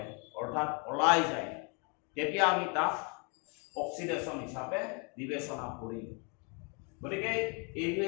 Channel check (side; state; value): right; quieter; 34.9 dB